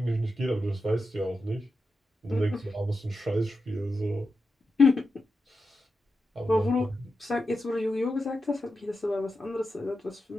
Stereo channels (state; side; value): normal; both; correlation 0.89